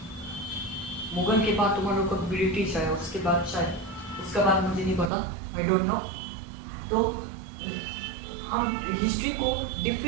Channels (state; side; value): drops out; left; at 5.1 s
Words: मुगल के बाद तुम्हारे लोग का ब्रिटिश आया, उसके बाद शायद, उसका बाद मुझे नहीं पता, आई डोंट नो। तो हम हिस्ट्री को